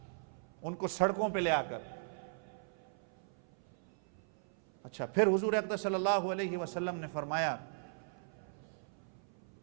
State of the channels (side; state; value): left; silent; 52 dB below the other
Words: ان کو سڑکوں پہ لے آ کر۔ اچھا، پھر حضور اکرم صلی اللہ علیہ وسلم نے فرمایا